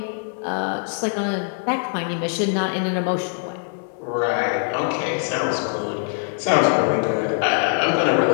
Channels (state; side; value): silent; right; 64 dB below the other